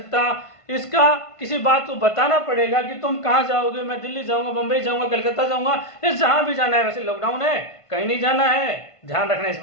इसका किसी बात को बताना पड़ेगा कि तुम कहां जाओगे, मैं दिल्ली जाऊंगा, बंबई जाऊंगा, कलकत्ता जाऊंगा, ये जहां भी जाना है। वैसे लॉकडाउन है, कहीं नहीं जाना है, ध्यान रखना इस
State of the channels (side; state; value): right; late; 1.5 ms